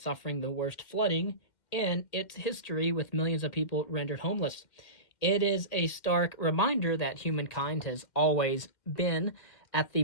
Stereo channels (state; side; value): late; right; 2.1 ms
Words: suffering the worst flooding in its history, with millions of people rendered homeless. It is a stark reminder that humankind has always been at the